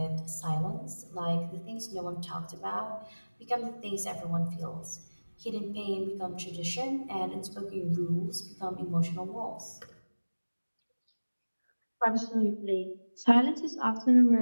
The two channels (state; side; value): inverted; both; correlation -1.00